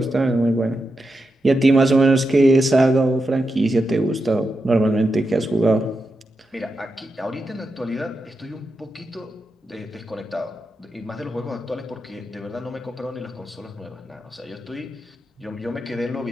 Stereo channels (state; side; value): normal; both; correlation 0.88